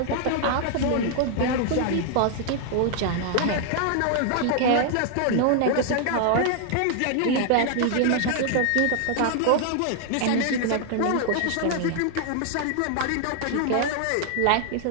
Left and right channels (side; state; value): both; different; correlation 0.00